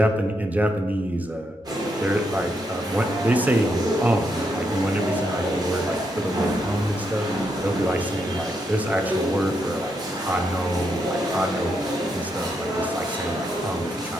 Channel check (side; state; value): both; normal; correlation 0.80